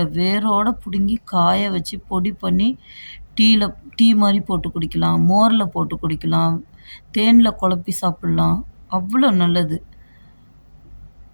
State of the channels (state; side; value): inverted; both; correlation -1.00